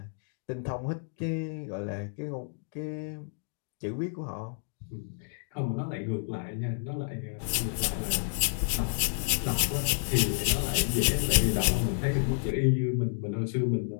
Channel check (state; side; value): silent; right; digital silence